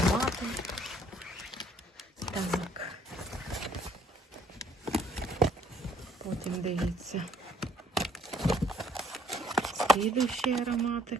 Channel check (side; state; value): both; normal; correlation 0.63